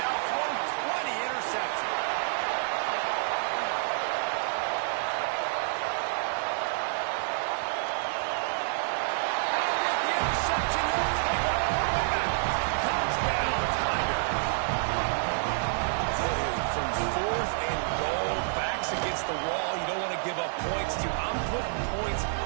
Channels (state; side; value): silent; left; digital silence